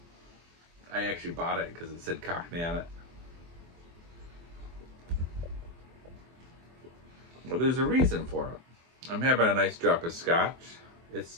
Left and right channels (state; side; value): late; left; 24 ms